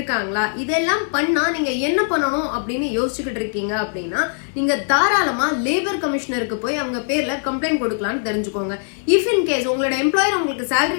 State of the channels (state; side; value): silent; right; 65 dB below the other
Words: இதெல்லாம் பண்ணா நீங்க என்ன பண்ணணும் அப்படின்னு யோசிச்சுக்கிட்டு இருக்கீங்க அப்படின்னா நீங்க தாராளமா லேபர் கமிஷனருக்கு போய் அவங்க பேர்ல கம்ப்ளைண்ட் கொடுக்கலாம்னு தெரிஞ்சுக்கோங்க. இஃப் இன் கேஸ் உங்களோட எம்ப்ளாயர் உங்களுக்கு salary